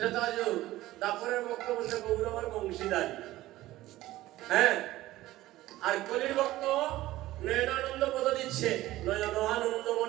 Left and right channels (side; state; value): left; quieter; 16.3 dB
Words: দাপরের বক্তব্য সে গৌর আমার বংশীদারি হ্যাঁ আর কলির ভক্ত নয়নানন্দ পদ দিচ্ছে নয়ন আনন্দ